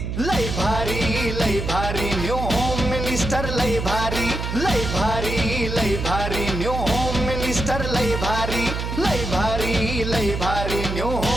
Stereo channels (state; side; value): noise; right; hum, 4 dB below the sound